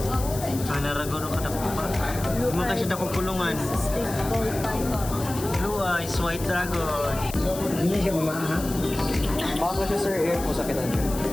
Naragono ka na po ba? Hindi mo kasi na kulungan. Blue eyes, white dragon. Hindi siya mamaha. Baka siya sir, air po sa kinan.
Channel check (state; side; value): noise; left; hiss, 11 dB below the sound